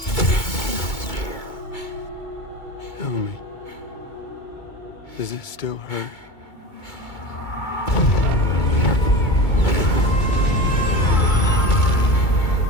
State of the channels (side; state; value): right; late; 2.2 ms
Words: Tell me, does it still hurt?